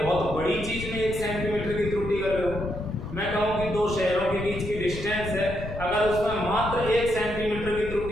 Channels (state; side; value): noise; left; rumble, 9 dB below the sound